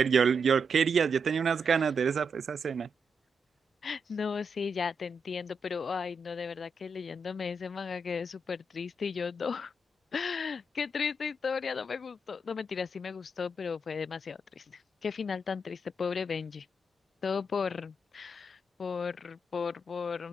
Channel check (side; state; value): both; normal; correlation 0.82